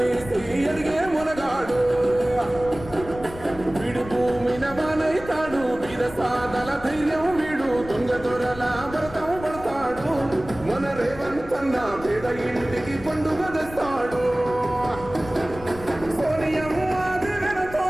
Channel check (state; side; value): noise; left; rumble, 15 dB below the sound